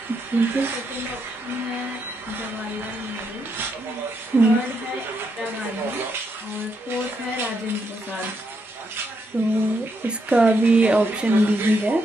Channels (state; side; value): normal; both; correlation 0.79